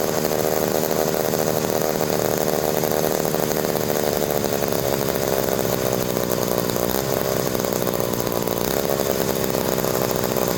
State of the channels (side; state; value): both; identical; correlation 1.00